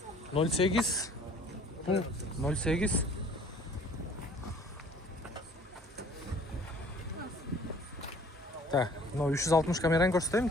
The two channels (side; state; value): both; normal; correlation 0.53